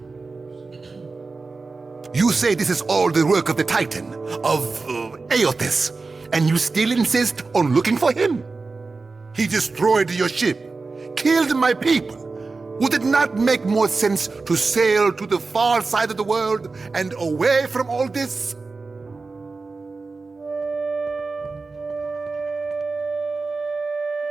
You say this is all the work of the Titan, of Ep8, and you still insist on looking for him? He destroyed your ship, killed my people. Would it not make more sense to sail to the far side of the world and away from all this?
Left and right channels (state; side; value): quieter; left; 4.0 dB